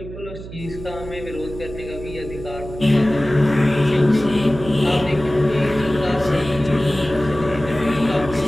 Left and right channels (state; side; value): noise; right; hum, 12 dB below the sound